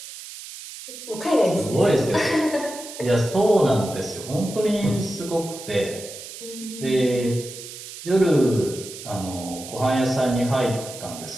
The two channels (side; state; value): right; noise; hiss, 13 dB below the sound